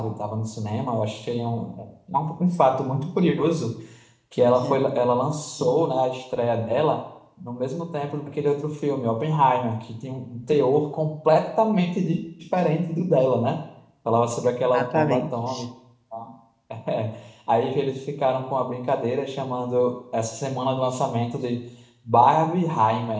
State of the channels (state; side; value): identical; both; correlation 1.00